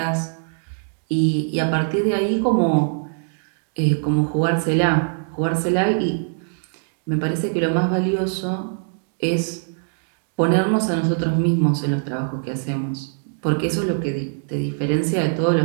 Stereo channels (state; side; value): silent; left; digital silence